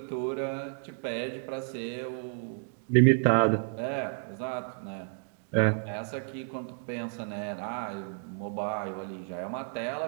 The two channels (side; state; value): left; silent; 57 dB below the other